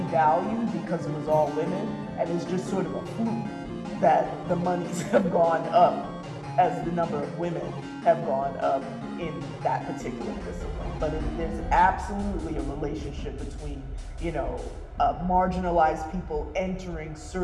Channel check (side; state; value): both; identical; correlation 1.00